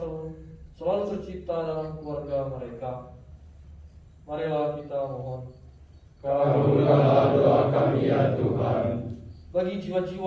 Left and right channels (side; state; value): both; identical; correlation 1.00